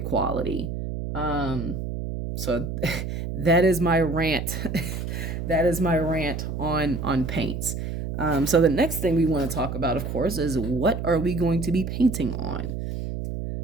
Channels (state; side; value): noise; right; hum, 5 dB below the sound